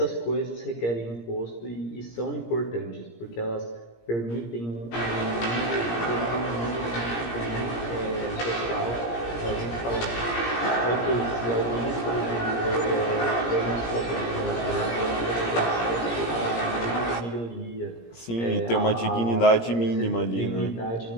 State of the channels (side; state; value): right; late; 17 ms